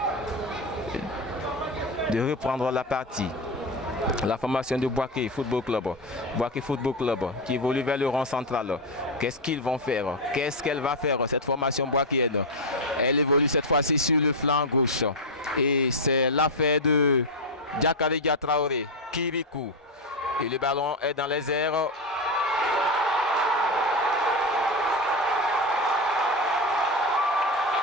de reprendre la partie. La formation de Boaké Football Club. Boaké Football Club qui évolue vers le rond central. Qu'est-ce qu'ils vont faire? Qu'est-ce qu'elle va faire, cette formation boakéenne? Elle évolue cette fois-ci sur le flanc gauche. Et c'est l'affaire de Diakaridia Traoré, Kirikou. Et le ballon est dans les airs.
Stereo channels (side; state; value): both; normal; correlation 0.09